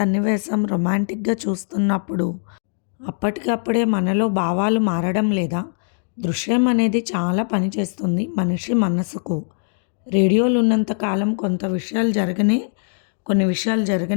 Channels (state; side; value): silent; right; digital silence